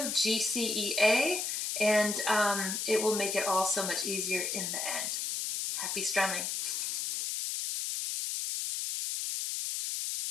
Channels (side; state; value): left; noise; hiss, 2 dB below the sound